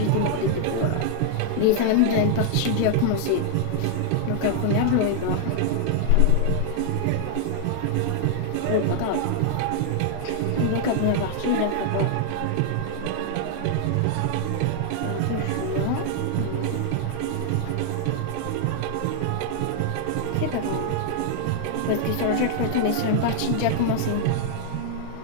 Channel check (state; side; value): different; both; correlation 0.00